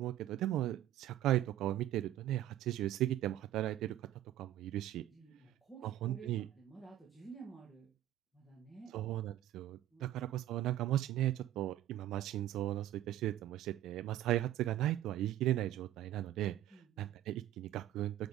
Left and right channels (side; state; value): left; quieter; 13.2 dB